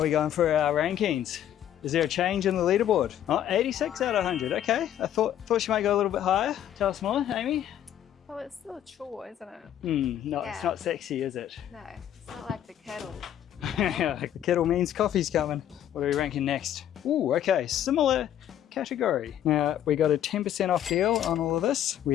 we going for our rankings? Is there a change in the leaderboard? Oh, 86 out of 100, okay. I thought she might go a little bit higher. Tell us more, Amy. Well, it's still a chore, isn't it? No, Yeah. It's not sexy, is it? No, it's not like the kettle. The kettle means coffee's coming. What are we ranking next? Ooh, okay, similar category. Now, we got a 10% off deal on all of this. We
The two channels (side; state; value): right; quieter; 10.9 dB